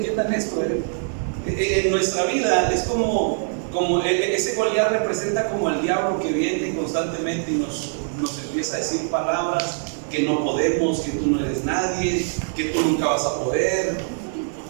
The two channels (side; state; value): left; silent; 56 dB below the other